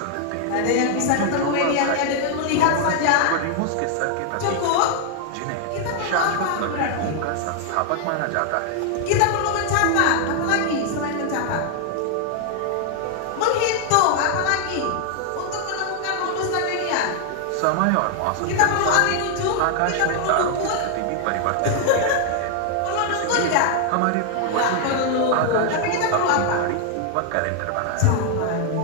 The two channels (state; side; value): different; both; correlation 0.00